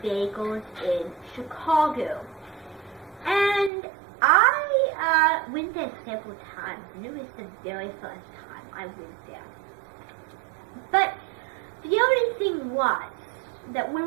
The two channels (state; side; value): drops out; left; at 3.7 s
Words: Bagels in Chicago. And I went there several times, and it was the very first time I went there. But the only thing was that